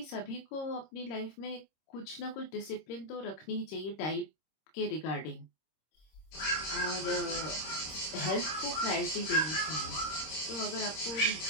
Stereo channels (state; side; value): late; right; 26 ms